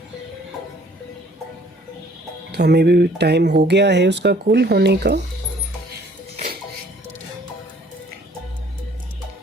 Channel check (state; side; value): normal; both; correlation 0.58